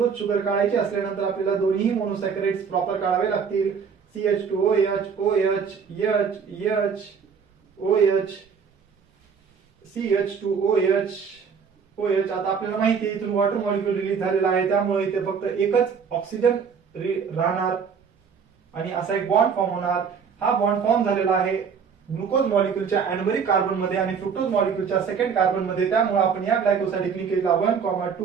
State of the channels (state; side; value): quieter; left; 6.3 dB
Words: शुगर काढायची असल्यानंतर आपल्याला दोन्ही मोनोसॅकराइड्स प्रॉपर काढावे लागतील. CH2OH OH OH CH2OH OH. आता आपल्याला माहिती आहे इथून वॉटर मॉलिक्यूल रिलीज झालेला आहे त्यामुळे इथे फक्त एकच ऑक्सिजन राहणार आणि असा एक बॉन्ड फॉर्म होणार. हा बॉन्ड फॉर्म झालेला आहे ग्लुकोज मॉलिक्यूलच्या अॅनोमेरिक कार्बन मध्ये आणि फ्रुक्टोज मॉलिक्यूलच्या सेकंड कार्बन मध्ये. त्यामुळे आपण या ग्लायकोसाइडिक लिंकेजला